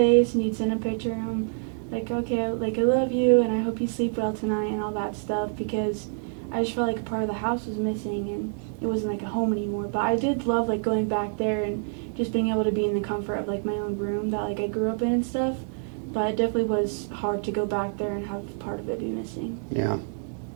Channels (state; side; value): silent; left; 60 dB below the other